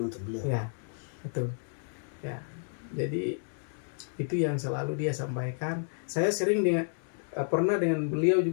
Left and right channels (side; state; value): right; silent; digital silence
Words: beliau. Ya, betul. Ya, jadi itu yang selalu dia sampaikan. Saya sering pernah dengan beliau